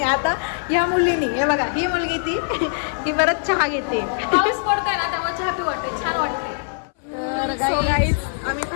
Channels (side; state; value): right; silent; 61 dB below the other